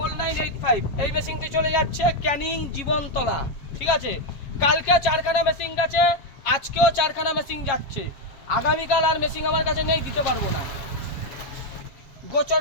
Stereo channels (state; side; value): late; right; 7.4 ms